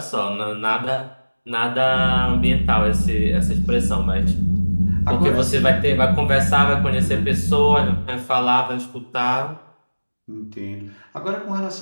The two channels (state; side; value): inverted; both; correlation -1.00